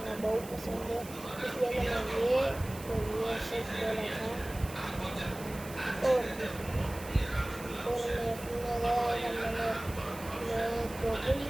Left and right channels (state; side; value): noise; right; hiss, 16 dB below the sound